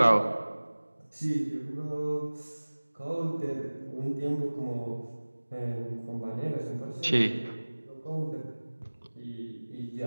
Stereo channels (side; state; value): both; inverted; correlation -1.00